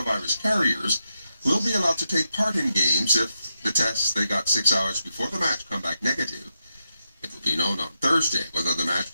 carriers will be allowed to take part in games if the tests they got 6 hours before the match come back negative. It will be known on Thursday whether the match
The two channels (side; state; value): both; inverted; correlation -0.86